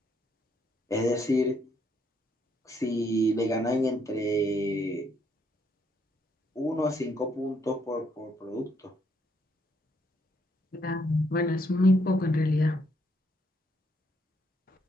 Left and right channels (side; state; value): both; normal; correlation 0.72